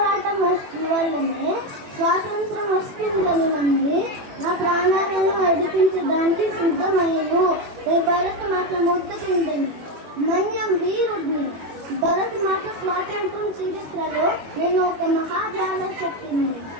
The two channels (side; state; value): left; late; 21 ms